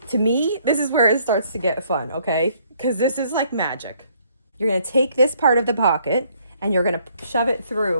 To me, this is where it starts to get fun, okay? Because this is like magic. You're gonna take this part of the pocket and you're gonna shove it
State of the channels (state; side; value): inverted; both; correlation -0.65